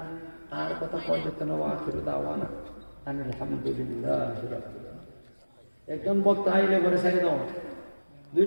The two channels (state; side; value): inverted; both; correlation -1.00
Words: আর কথা পর্যন্ত দাওয়ানা আলহামদুলিল্লাহ একজন বক্তা আইলে ঘরে ছেড়ে দাও